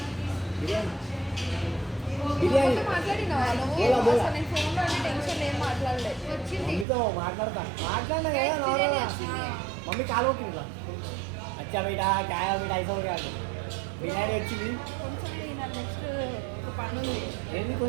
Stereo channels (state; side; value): drops out; left; at 6.9 s